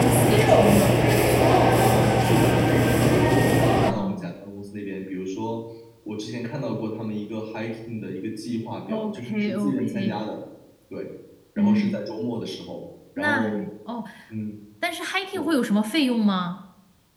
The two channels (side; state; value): both; identical; correlation 1.00